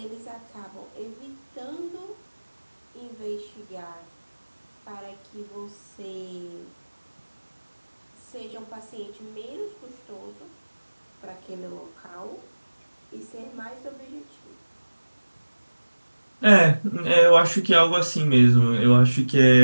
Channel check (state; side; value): inverted; both; correlation -1.00